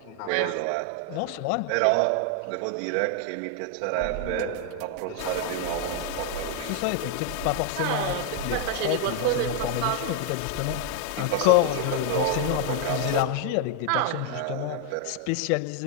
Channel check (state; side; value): different; both; correlation 0.01